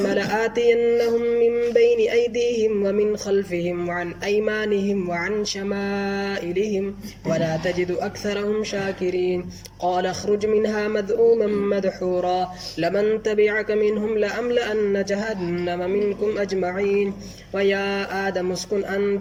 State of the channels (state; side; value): identical; both; correlation 1.00